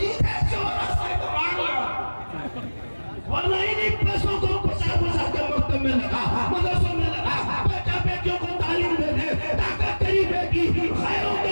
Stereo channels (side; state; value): both; inverted; correlation -1.00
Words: चौरास्ते को मार लो। वरना इन्हीं पैसों को बचा के मकतब में लगा, मदरसों में लगा। बेटा बेटियों को तालीम दे दे ताकि तेरी बेटी खैरों के